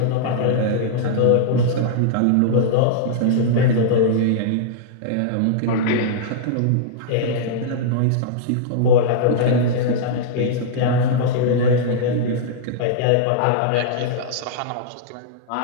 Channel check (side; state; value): both; different; correlation -0.02